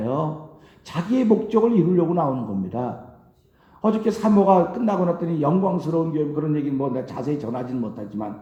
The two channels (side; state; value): both; identical; correlation 1.00